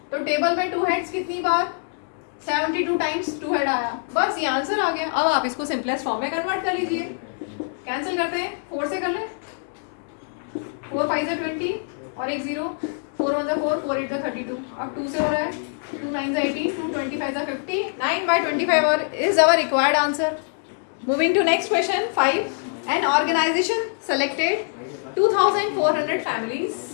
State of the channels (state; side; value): silent; right; 63 dB below the other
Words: तो टेबल में 2 हेड्स कितनी बार? 72 टाइम्स 2 हेड आया। बस ये आंसर आ गया। अब आप इसको सिंपलेस्ट फॉर्म में कन्वर्ट कर लीजिए। कैंसिल करते हैं, 4 से कर लें। 4 5 20 और एक 0, 4 1 4, 4 8 32। अब 2 से हो रहा है, 2 9 18, 2 25 50, 9/25 और is our required answer. Moving to next question 5। An organisation selected 2400 families.